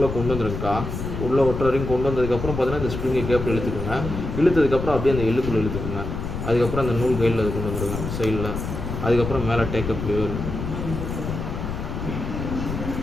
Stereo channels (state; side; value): noise; left; rumble, 5 dB below the sound